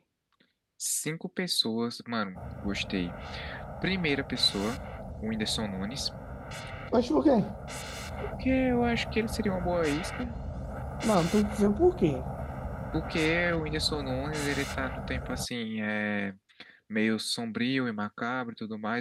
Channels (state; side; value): identical; both; correlation 1.00